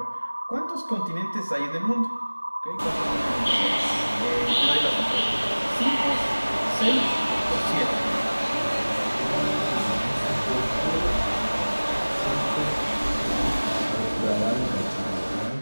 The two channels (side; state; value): both; inverted; correlation -1.00